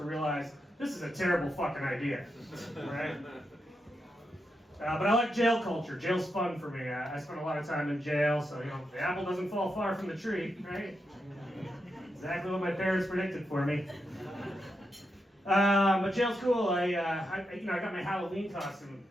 realize this is a terrible fucking idea, right? But I like jail culture. Jail's fun for me. I spent a lot of time in jail, so, the apple doesn't fall far from the tree, right? Exactly what my parents predicted for me. But jail's cool. I got my Halloween costume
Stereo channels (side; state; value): both; normal; correlation 0.85